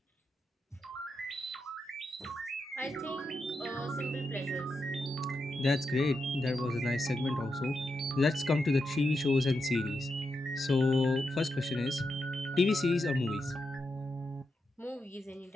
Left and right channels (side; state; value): both; normal; correlation 0.86